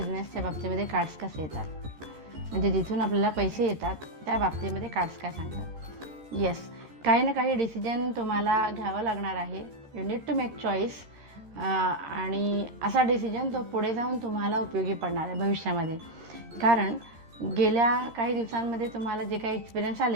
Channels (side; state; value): left; late; 14 ms